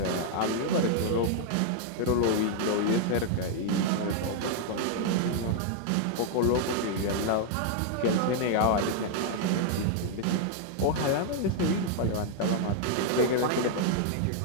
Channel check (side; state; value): both; different; correlation 0.00